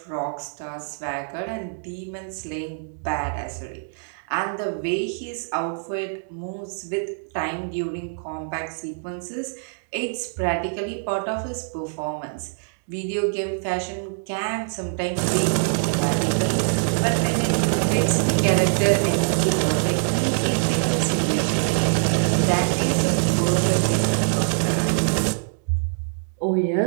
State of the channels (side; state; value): left; silent; digital silence